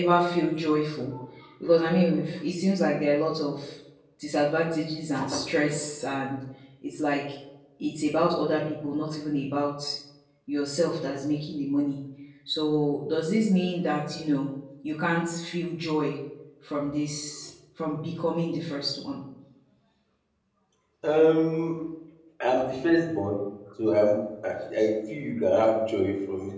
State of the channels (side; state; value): both; identical; correlation 1.00